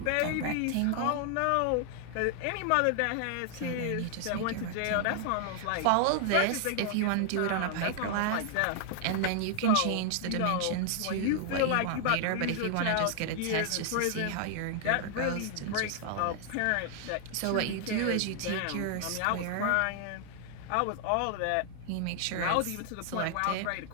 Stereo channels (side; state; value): both; different; correlation 0.00